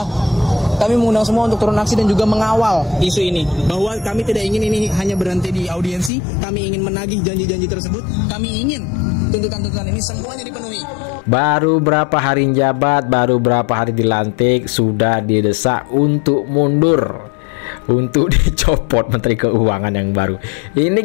Kami mengundang semua untuk turun aksi dan juga mengawal isu ini. Bahwa kami tidak ingin ini hanya berhenti di audiensi, kami ingin menagih janji-janji tersebut, kami ingin tuntutan-tuntutan ini semuanya dipenuhi. Baru berapa hari jabat, baru berapa hari dilantik, sudah didesak untuk mundur, untuk dicopot Menteri Keuangan yang baru. Ini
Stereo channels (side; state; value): right; drops out; at 6.1 s